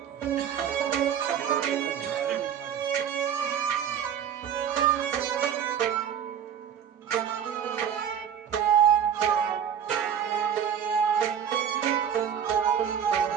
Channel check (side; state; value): left; quieter; 8.7 dB